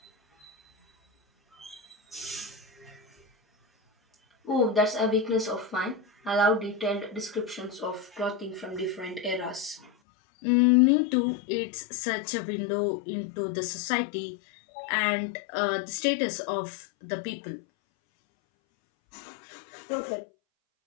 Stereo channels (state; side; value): drops out; right; at 9.9 s